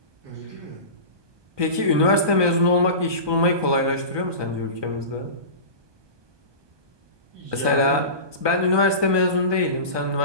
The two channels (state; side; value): late; left; 1.2 ms